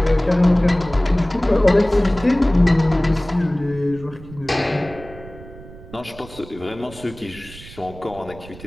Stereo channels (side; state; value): right; noise; rumble, 18 dB below the sound